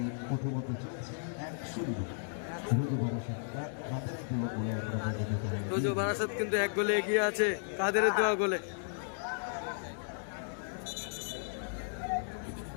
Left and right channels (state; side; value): silent; right; digital silence